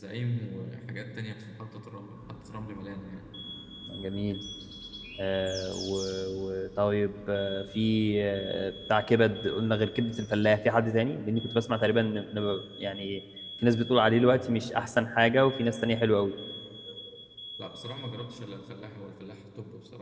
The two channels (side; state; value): both; identical; correlation 1.00